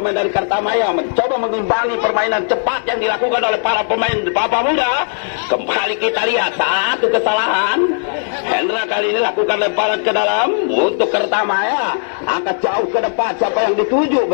dari Kertamaya mencoba mengimbangi permainan cepat yang dilakukan oleh para pemain Papa Muda. Kembali kita lihat satu kesalahan. Hendra kali ini lakukan lemparan ke dalam untuk Kertamaya. Angkat jauh ke depan, siapa yang dituju?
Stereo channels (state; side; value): silent; right; 59 dB below the other